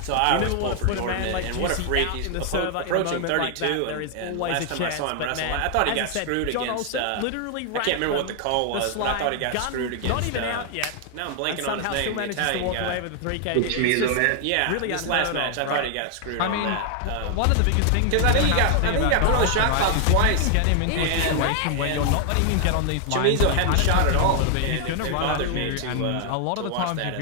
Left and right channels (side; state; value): both; different; correlation 0.00